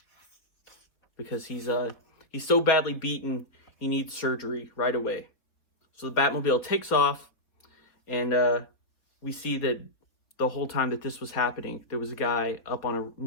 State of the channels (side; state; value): right; late; 4.3 ms